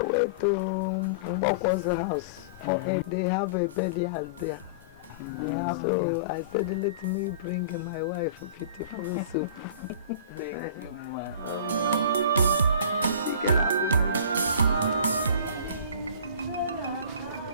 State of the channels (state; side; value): inverted; both; correlation -0.38